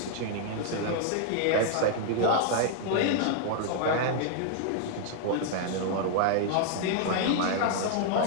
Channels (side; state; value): both; different; correlation 0.00